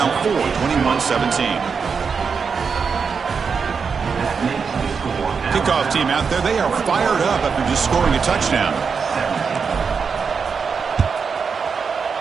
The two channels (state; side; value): quieter; left; 5.7 dB